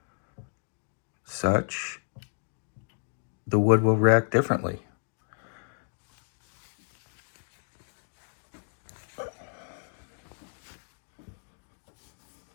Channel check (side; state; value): right; silent; digital silence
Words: such, the wood will react differently.